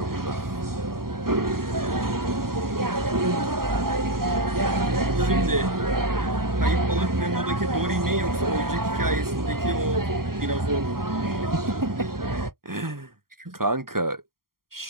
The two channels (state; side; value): late; left; 0.92 ms